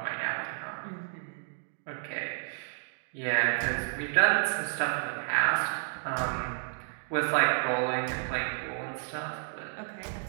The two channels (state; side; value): silent; left; digital silence